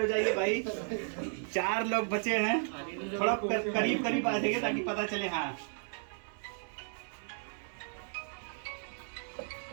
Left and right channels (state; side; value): silent; left; 55 dB below the other